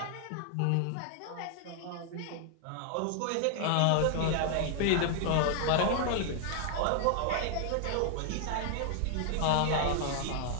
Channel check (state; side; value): different; both; correlation 0.00